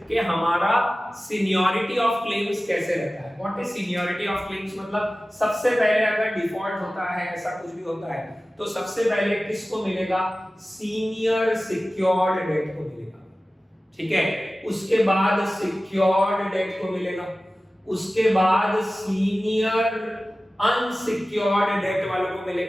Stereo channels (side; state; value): both; normal; correlation 0.96